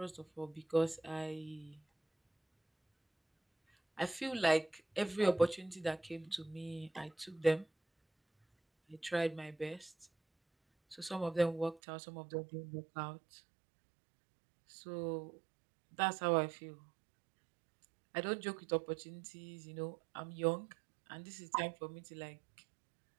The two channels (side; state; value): left; drops out; at 11.8 s